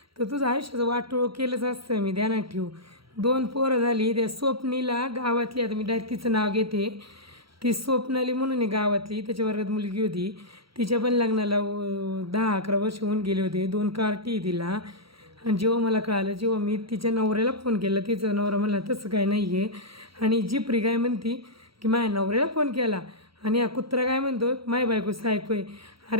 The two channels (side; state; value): left; late; 0.75 ms